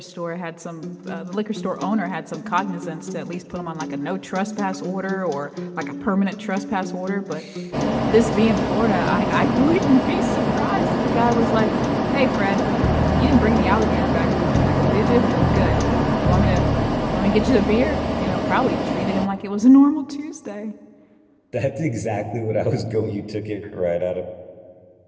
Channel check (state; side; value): identical; both; correlation 1.00